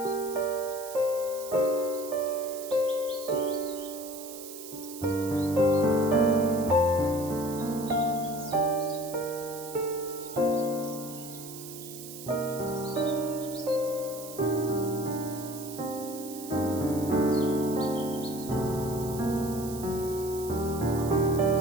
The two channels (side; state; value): right; noise; hiss, 13 dB below the sound